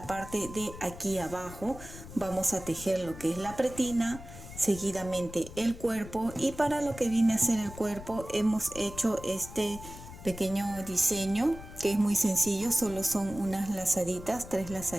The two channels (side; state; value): left; noise; rumble, 14 dB below the sound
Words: parte de aquí abajo. Vamos a tejer lo que es la pretina, seguidamente el cuerpo, y para lo que viene a ser el cuerpo hemos hecho este pequeño diseño que es muy sencillo. Solo son unas lazaditas, 3